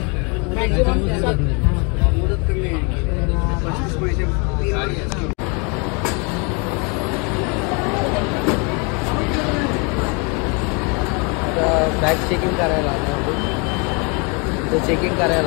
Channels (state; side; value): quieter; right; 32.5 dB